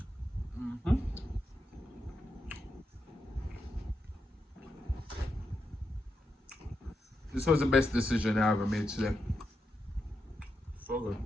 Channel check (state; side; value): normal; both; correlation 0.85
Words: This was the best decision I ever made today. So good.